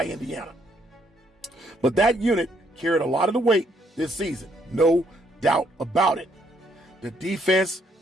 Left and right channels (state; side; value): normal; both; correlation 0.71